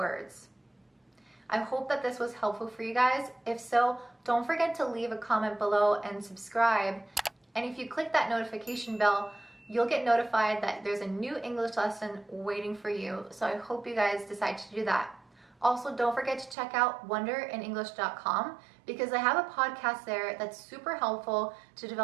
I hope that this was helpful for you guys. If so, don't forget to leave a comment below and subscribe. And if you click that notification bell, you'll get notified that there's a new English lesson waiting for you. So I hope you guys decide to do that. Also, don't forget to check out wonderinenglish.com because I have a podcast there that's super helpful to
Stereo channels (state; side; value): drops out; left; at 16.6 s